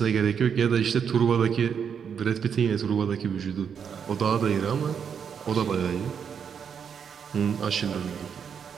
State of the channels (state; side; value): quieter; left; 7.3 dB